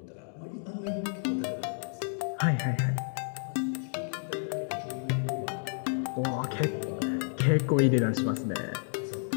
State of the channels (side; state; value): right; silent; digital silence